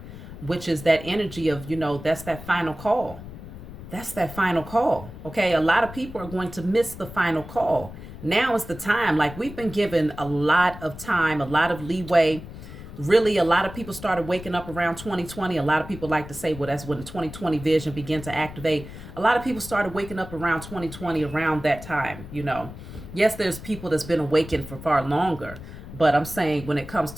which is that energy of, that's that final call. That's that final call. Okay. A lot of people are going to miss the final call. Now is the time. Like, we've been given a lot of time, a lot of leeway. Really, a lot of people started waking up around 2020. A lot of people like to say, well, that's when the 2020 vision began to activate. A lot of people started waking up around 2020, around that time. Yes, there's people that's been awakened for far longer, but I'm saying when it comes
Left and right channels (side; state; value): left; noise; rumble, 13 dB below the sound